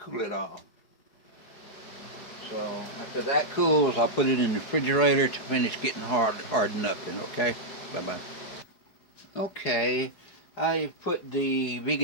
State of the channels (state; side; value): late; right; 4.8 ms